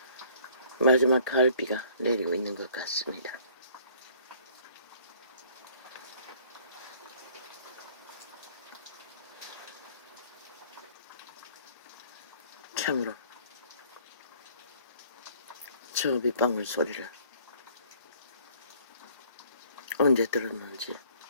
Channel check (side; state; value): both; inverted; correlation -0.56